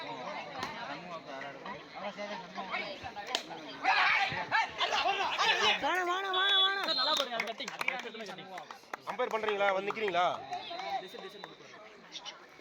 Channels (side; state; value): both; identical; correlation 1.00